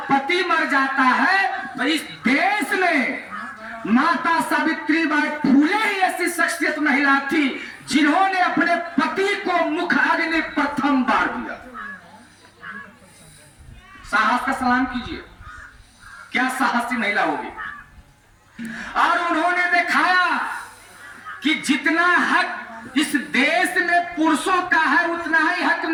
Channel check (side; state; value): both; identical; correlation 1.00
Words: पति मर जाता है तो इस देश में माता सावित्रीबाई फूले ही ऐसी शख्सियत महिला थी जिन्होंने अपने पति को मुख अग्नि प्रथम बार दिया। साहस का सलाम कीजिए, क्या साहसी महिला होगी। और उन्होंने दिखाया कि जितना हक इस देश में पुरुषों का है, उतना ही हक